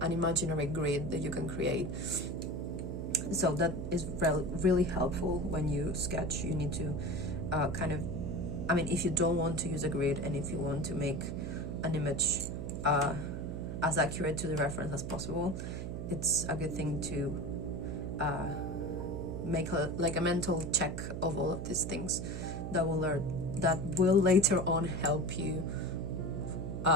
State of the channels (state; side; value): noise; right; hum, 5 dB below the sound